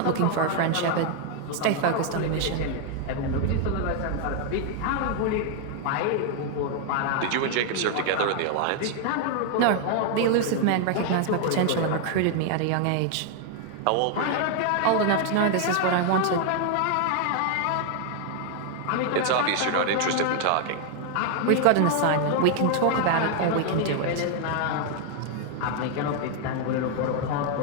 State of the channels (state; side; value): different; both; correlation 0.00